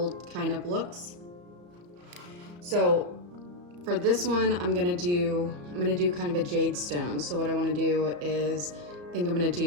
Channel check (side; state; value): left; late; 34 ms